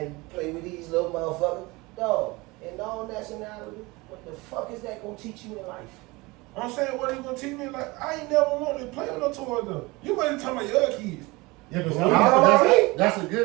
play with these little motherfuckers. Dog, in all nationality, what the fuck is that gonna teach you in life? I'm saying, what are you going to teach me? Like, I ain't never wanted to play with no toys, though. You wasn't talking about your other kids. Yeah, but That's a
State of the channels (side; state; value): left; quieter; 23.3 dB